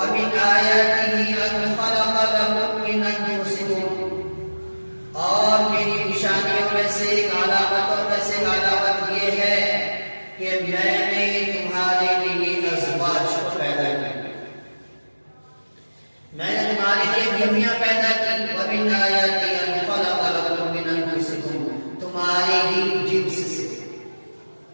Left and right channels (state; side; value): inverted; both; correlation -1.00